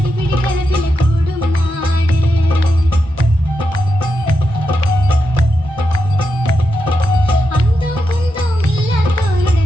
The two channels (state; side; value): late; left; 1.4 ms